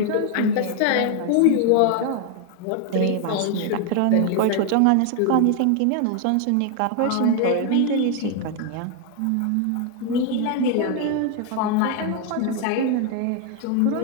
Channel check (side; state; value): both; different; correlation 0.00